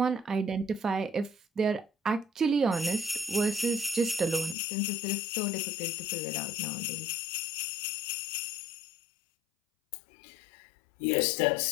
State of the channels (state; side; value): drops out; right; at 4.5 s